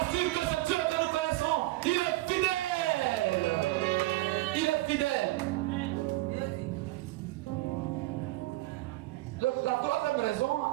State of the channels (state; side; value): quieter; left; 19.2 dB